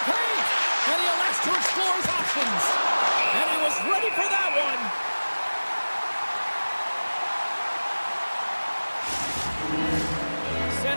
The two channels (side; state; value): both; inverted; correlation -1.00